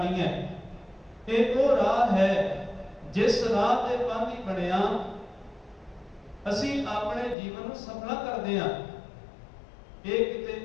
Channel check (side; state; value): right; drops out; at 7.4 s